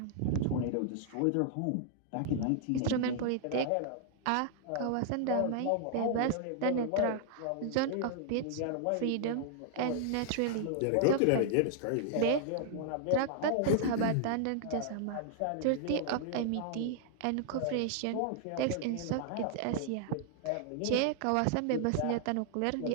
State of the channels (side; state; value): both; different; correlation -0.01